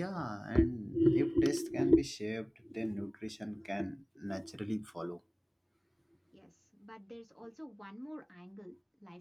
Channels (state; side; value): identical; both; correlation 1.00